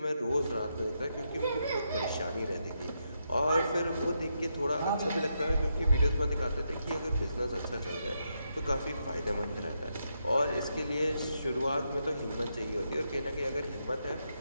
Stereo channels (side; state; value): both; inverted; correlation -0.82